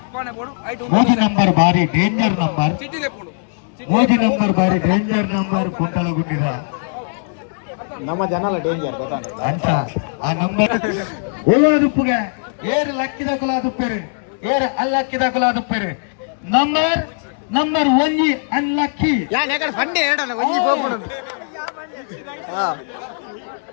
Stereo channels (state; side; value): silent; right; digital silence